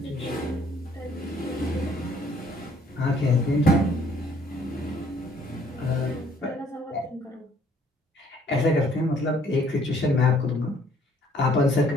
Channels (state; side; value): normal; both; correlation 0.62